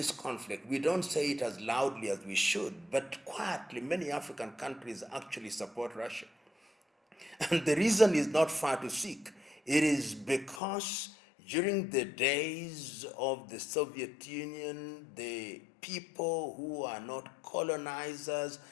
conflict, we don't say it as loudly as we should, but quietly, many African countries actually support Russia. And the reason is not far to seek. It is because during the days of the Soviet Union, the people who are not colonizers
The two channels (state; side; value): drops out; right; at 10.6 s